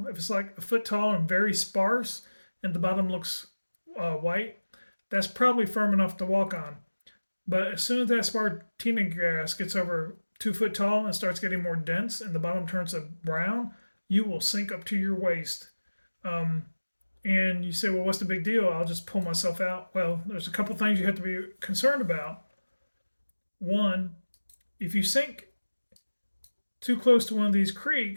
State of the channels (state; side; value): inverted; both; correlation -1.00